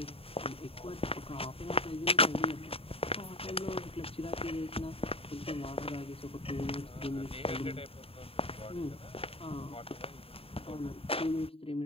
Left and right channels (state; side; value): late; right; 0.27 ms